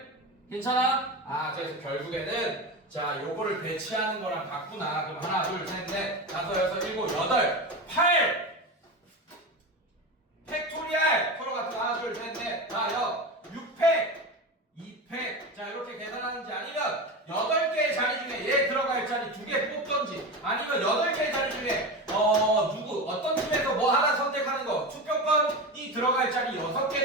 괜찮아? 그래서 결국에는 자, 요거를 배치하는 거랑 같구나. 그럼 하나, 둘, 셋, 넷, 다섯, 여섯, 일곱, 여덟, 8! 팩토리얼! 서로 같은 하나, 둘, 셋, 넷, 다, 6팩! 2팩. 자, 이렇게 계산하는지 아니면 8개의 자리 중에 얘 들어갈 자리 2개 뽑던지 아니면 8개의 자리 중에 어떤 팀에서 뭐 하나 선택하는 거 투표권이 들어갈 자리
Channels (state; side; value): normal; both; correlation 0.23